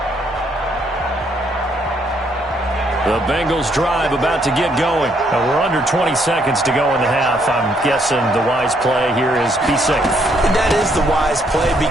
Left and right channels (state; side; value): normal; both; correlation 0.71